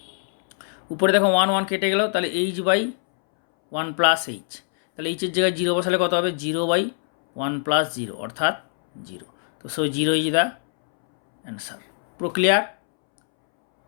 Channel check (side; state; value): right; silent; 64 dB below the other